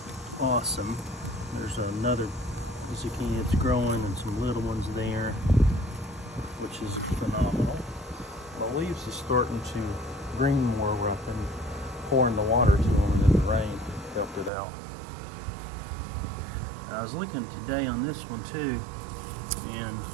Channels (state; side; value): drops out; left; at 14.5 s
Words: awesome. There's another zucchini that's growing and some little ones there, which is phenomenal. The leaves is starting to green more where I've been pouring the water to them, and then the rain helped it out. I was looking today on this one too, and